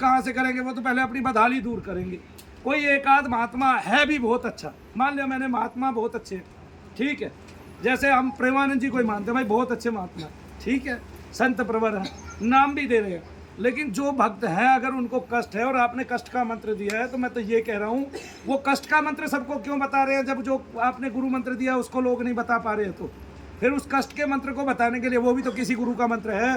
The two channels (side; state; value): both; identical; correlation 1.00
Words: से करेंगे, वो तो पहले अपनी बदहाली दूर करेंगे। कोई एक आध महात्मा है भी बहुत अच्छा, मान लिया मैंने महात्मा बहुत अच्छे, ठीक है, जैसे हम प्रेमानंद जी को ही मानते हैं भाई बहुत अच्छे महात्मा, ठीक है, संत प्रवर है, नाम भी दे रहे हैं। लेकिन जो भक्त है अगर उनको कष्ट है और आपने कष्ट का मंत्र दिया है, तो मैं तो ये कह रहा हूँ वो कष्ट का मंत्र सबको क्यों बता रहे हैं, जब जो आपने गुरु मंत्र दिया उसको लोग नहीं बता पा रहे हैं, तो फिर उस कष्ट के मंत्र को बताने के लिए वो भी तो किसी गुरु का मंत्र